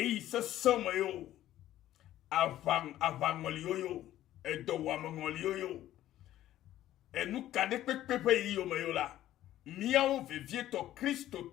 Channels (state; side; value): quieter; right; 13.3 dB